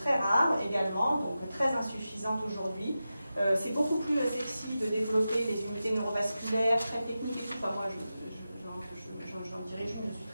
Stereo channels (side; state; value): both; inverted; correlation -0.92